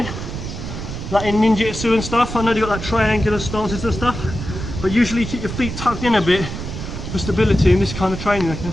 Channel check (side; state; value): right; noise; rumble, 7 dB below the sound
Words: like in ninjutsu and stuff. I know they've got like triangular stances and stuff, but usually keep your feet tucked in a bit for stability in this kind of training. Okay,